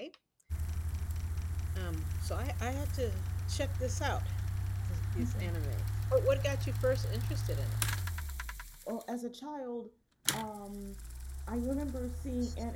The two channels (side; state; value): both; identical; correlation 1.00